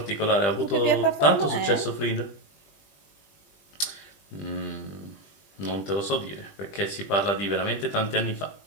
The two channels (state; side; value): late; right; 20 ms